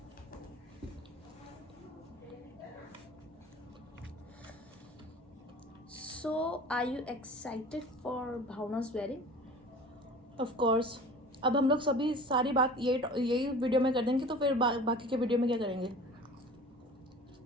So, are you excited for Bhavna's wedding? Of course. अब हम लोग सभी सारी बात यही वीडियो में कर देंगे, तो फिर बाकी के वीडियो में क्या करेंगे?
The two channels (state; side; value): normal; both; correlation 0.42